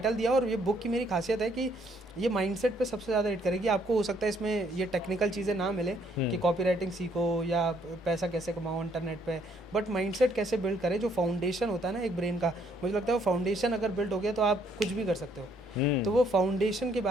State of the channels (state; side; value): normal; both; correlation 0.67